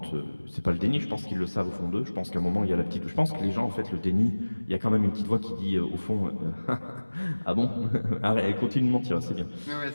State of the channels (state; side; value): inverted; both; correlation -1.00